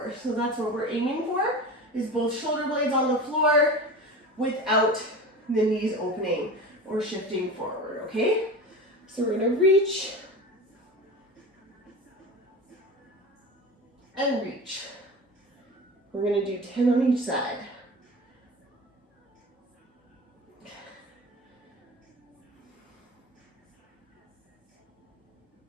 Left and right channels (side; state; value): both; normal; correlation 0.31